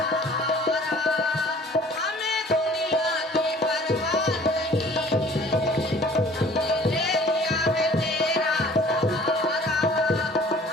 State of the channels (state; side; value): normal; both; correlation 0.51